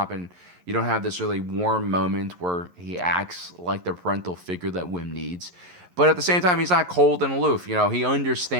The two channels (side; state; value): left; late; 11 ms